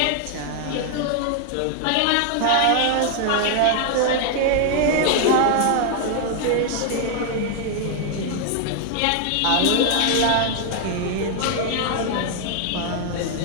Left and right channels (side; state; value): both; different; correlation 0.00